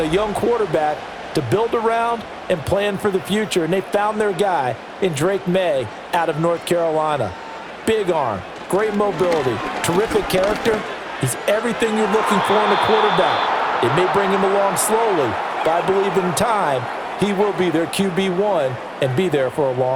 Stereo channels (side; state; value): both; identical; correlation 1.00